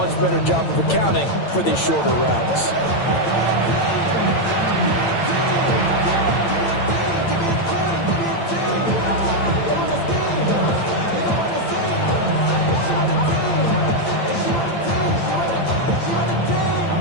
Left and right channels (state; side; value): late; right; 8.9 ms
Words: better job of accounting for these shorter routes.